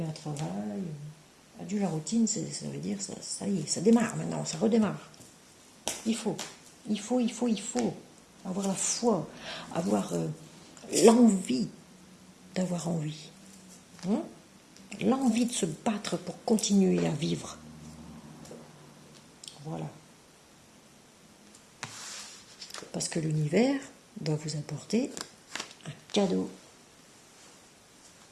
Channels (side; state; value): both; identical; correlation 1.00